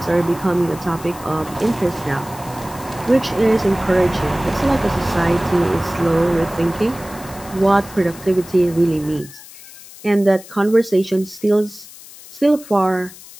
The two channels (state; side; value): noise; left; hiss, 18 dB below the sound